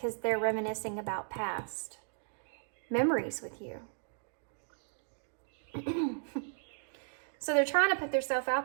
they're reminiscing about past memories with you. So they're trying to put themselves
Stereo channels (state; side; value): silent; left; digital silence